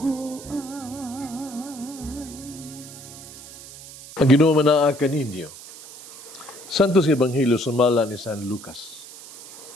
Ang Ginoo manaa kaninyo. Santos Ebanghelyo sumala ni San Lucas.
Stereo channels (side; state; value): right; noise; hiss, 16 dB below the sound